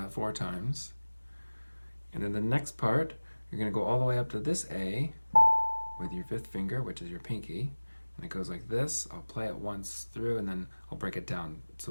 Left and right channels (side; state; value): both; inverted; correlation -1.00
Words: 4 times. And then the next part, you're going to go all the way up to this A with your 5th finger, which is your pinky, and it goes like this. I'll play it once through and then I'll break it down